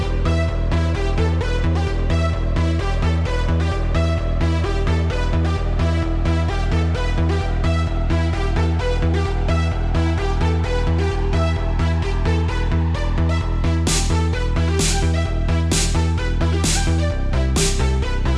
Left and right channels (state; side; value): identical; both; correlation 1.00